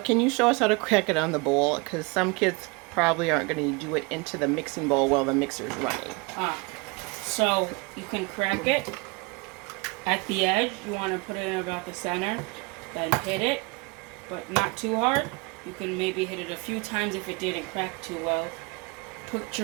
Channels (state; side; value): quieter; left; 27.6 dB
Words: you show us how to crack it on the bowl? Because some kids probably aren't going to do it into the mixing bowl while the mixer's running. So you can crack it at the edge. You want to put it in about the center, then hit it, but not too hard. You can maybe hit it a few times if it didn't crack too well. Put